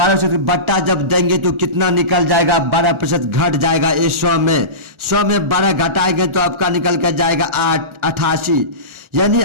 बट्टा जब देंगे तो कितना निकल जाएगा, 12% घट जाएगा। 100 में 12 घटाएंगे तो आपका निकल कर जाएगा 88, यानी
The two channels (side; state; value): left; late; 1.4 ms